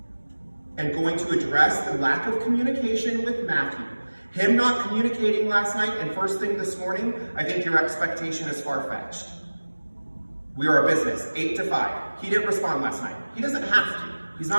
and going to address the lack of communication with Matthew. Him not communicating last night and first thing this morning, I think your expectation is far-fetched. We are a business, 8 to 5. He didn't respond last night. He doesn't have to. He's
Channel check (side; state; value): both; inverted; correlation -1.00